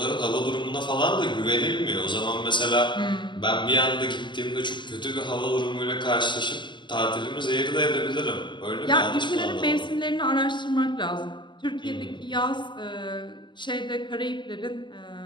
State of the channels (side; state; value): right; late; 0.22 ms